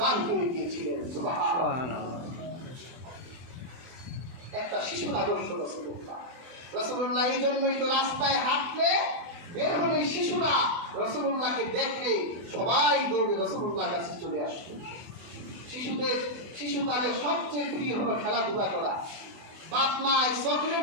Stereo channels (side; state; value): left; late; 24 ms